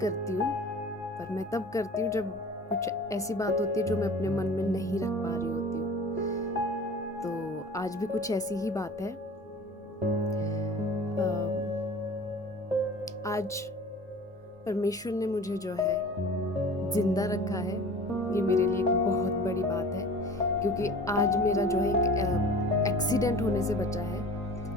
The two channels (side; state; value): both; normal; correlation 0.41